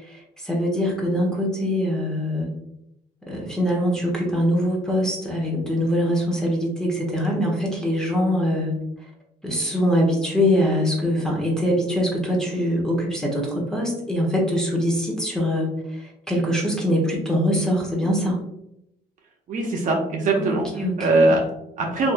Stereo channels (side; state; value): both; normal; correlation 0.62